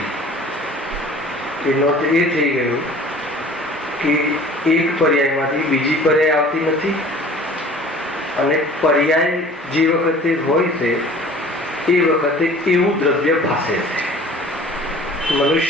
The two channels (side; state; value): both; normal; correlation 0.47